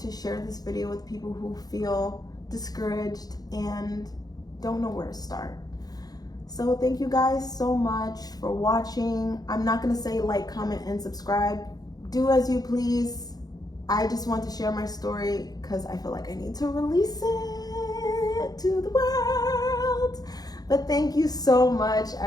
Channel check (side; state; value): right; late; 0.19 ms